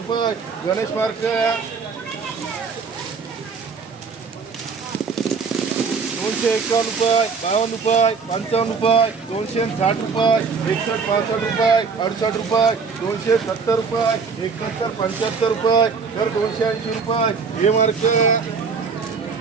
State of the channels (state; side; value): quieter; left; 5.2 dB